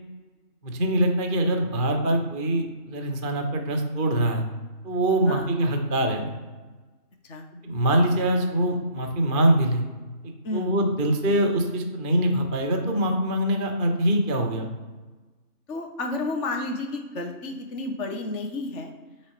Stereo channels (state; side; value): late; right; 2.5 ms